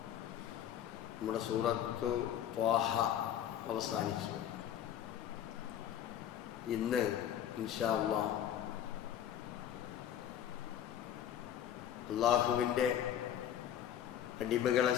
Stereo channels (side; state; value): right; quieter; 10.3 dB